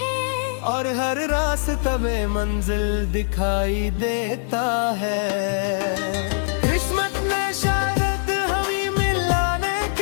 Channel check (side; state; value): right; silent; digital silence